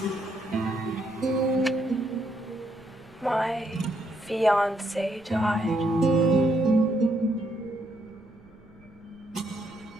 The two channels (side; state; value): right; noise; rumble, 27 dB below the sound